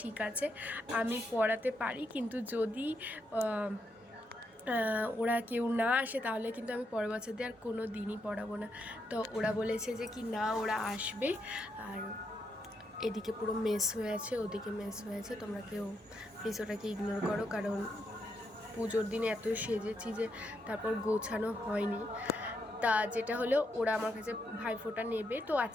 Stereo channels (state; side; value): normal; both; correlation 0.80